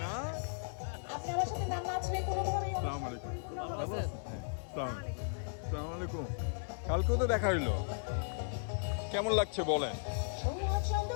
না? আসসালামু আলাইকুম, ভালো আছেন? হ্যাঁ, আসসালামু আলাইকুম। কালকেও তো দেখা হইলো, কেমন লাগছে বলেন?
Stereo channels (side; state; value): right; silent; digital silence